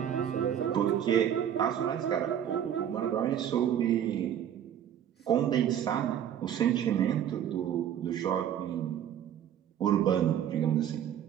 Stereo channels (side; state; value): left; quieter; 9.8 dB